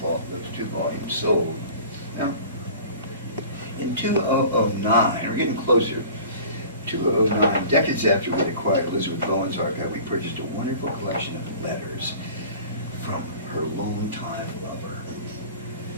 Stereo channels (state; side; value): inverted; both; correlation -0.43